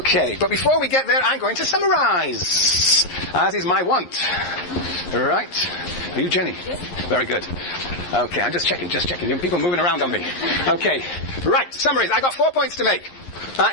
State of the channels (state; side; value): late; right; 11 ms